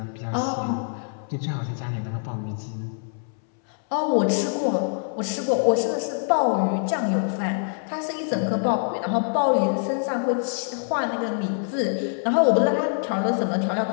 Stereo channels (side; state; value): right; silent; 62 dB below the other